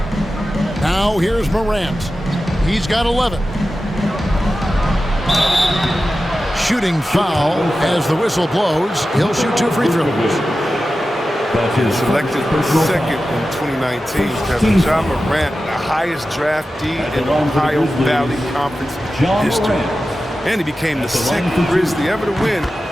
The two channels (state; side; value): normal; both; correlation 0.93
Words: Now here's Morant. He's got 11. Shooting foul as the whistle blows. He'll shoot 2 free throws. Selected second in 2019, Kevin. Ja Morant, the highest draftee in Ohio Valley Conference history. And he became the second Grizzly ever to win